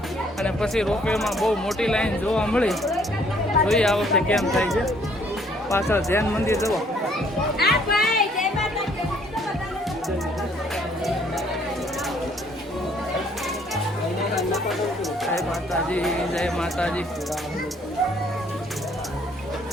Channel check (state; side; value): normal; both; correlation 0.63